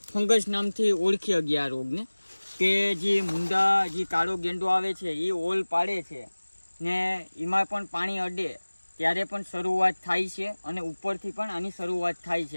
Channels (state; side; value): inverted; both; correlation -1.00